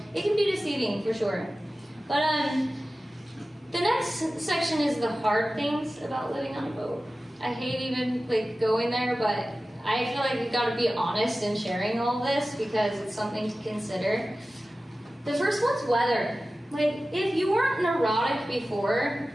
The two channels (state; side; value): normal; both; correlation 0.95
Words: it can be deceiving for sure. But the next section is the hard things about living on a boat. I hate even like going there, but I feel like we've got to be honest in sharing all this because it's something to consider. The first one's weather. Like, if you weren't neurotic before,